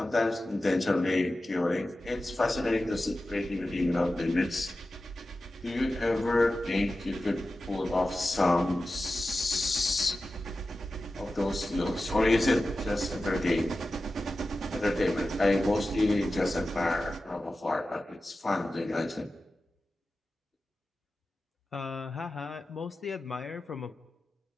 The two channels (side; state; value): both; normal; correlation 0.94